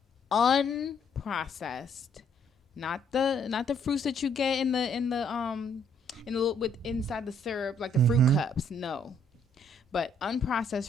unprocessed, not the fruits that you get in the with inside the syrup like the fruit cups. No, but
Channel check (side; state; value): both; normal; correlation 0.67